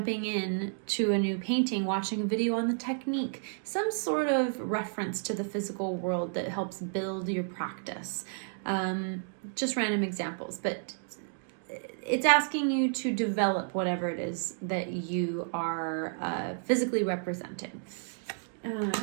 in to a new painting, watching a video on the technique, some sort of reference to the physical world that helps build your practice. Just random examples, but it's asking you to develop whatever it is that you are physically representing.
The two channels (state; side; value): silent; left; digital silence